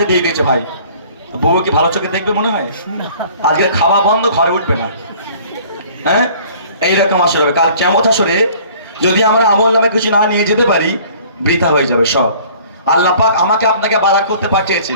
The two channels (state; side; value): inverted; both; correlation -0.52